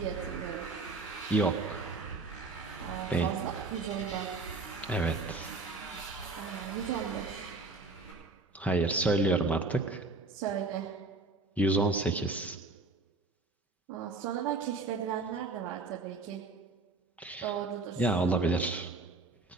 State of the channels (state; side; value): quieter; left; 3.4 dB